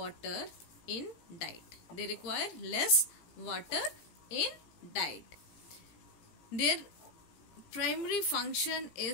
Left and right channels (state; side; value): late; right; 17 ms